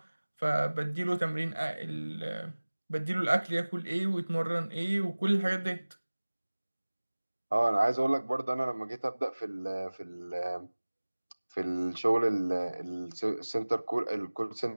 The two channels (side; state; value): both; inverted; correlation -1.00